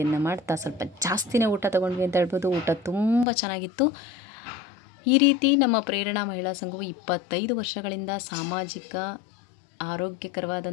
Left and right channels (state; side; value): drops out; right; at 3.2 s